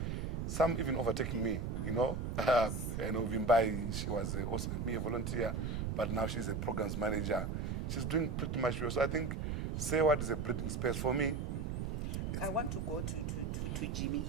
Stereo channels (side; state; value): right; noise; rumble, 2 dB below the sound